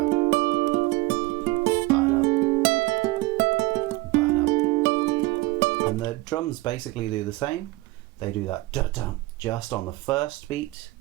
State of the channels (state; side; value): quieter; left; 20.8 dB